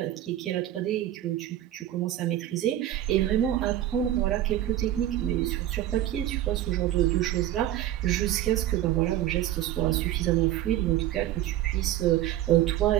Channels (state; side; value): quieter; left; 12.9 dB